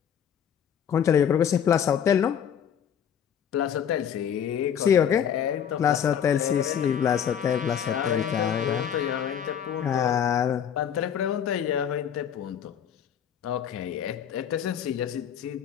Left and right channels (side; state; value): right; quieter; 8.6 dB